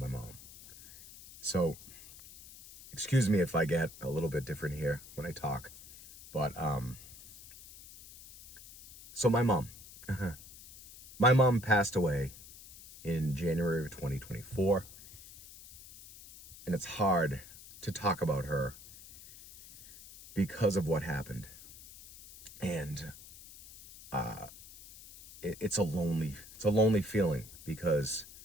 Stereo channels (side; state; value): left; noise; hiss, 18 dB below the sound